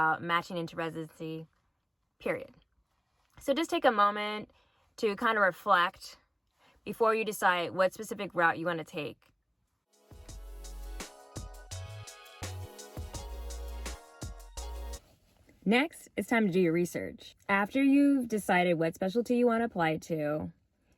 matching into residency, period. So just take a moment to kind of reflect before you decide what specific route you want to take. Next, it's time to do your research. After you've decided what specialty you want to apply to,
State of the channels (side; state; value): both; identical; correlation 1.00